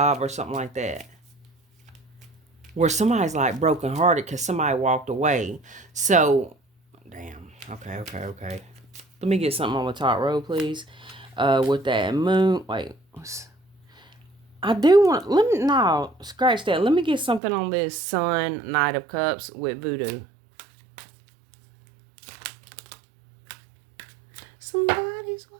or something like that, where somebody's like brokenhearted because somebody walked away. So, damn. Okay. Let me get something on the top row, please. With that moon. Wait. I do want... No, scratch that. Let me get something on this Sun, Knight of Cups with voodoo. Somebody's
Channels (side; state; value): left; drops out; at 17.4 s